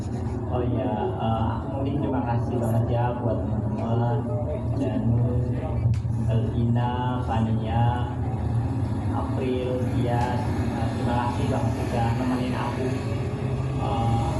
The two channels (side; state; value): both; identical; correlation 1.00